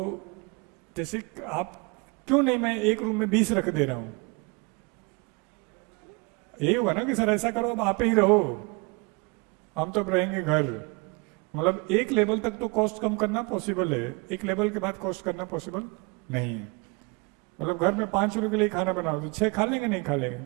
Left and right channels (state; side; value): quieter; left; 28.9 dB